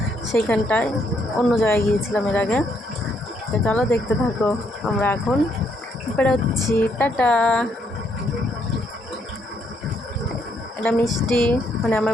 সেইখানটায় অন্য জায়গায় গিয়েছিলাম এর আগে। তো চলো দেখতে থাকো। আমরা এখন বেরোচ্ছি। টাটা। এটা মিষ্টি, মানে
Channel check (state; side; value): normal; both; correlation 0.73